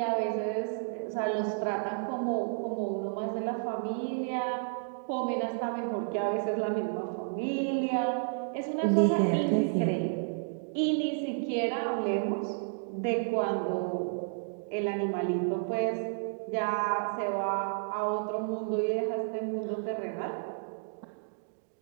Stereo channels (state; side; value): silent; left; digital silence